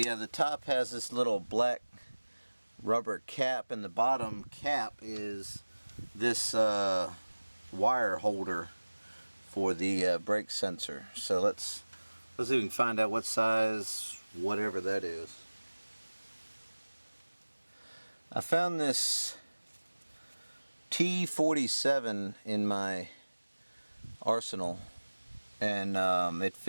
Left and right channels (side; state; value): both; inverted; correlation -1.00